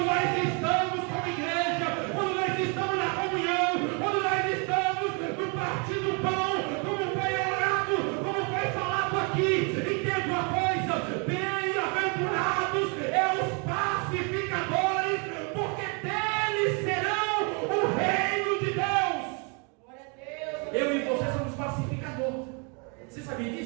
nós estamos como igreja, quando nós estamos na comunhão, quando nós estamos no partir do pão, como foi orado, como foi falado aqui, entenda uma coisa: bem-aventurados os pacificadores, porque deles serão o reino de Deus. Eu e você somos pacificadores. Você sabia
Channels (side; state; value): left; quieter; 34.9 dB